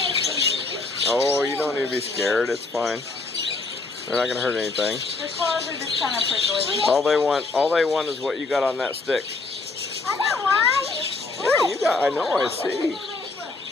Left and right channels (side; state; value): right; quieter; 3.6 dB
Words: Oh, you don't need to be scared. It's fine. They're not going to hurt anything. Their claws are just kind of prickly. All they want is what you got on that stick. I don't want. Yeah, you got, I know, I see.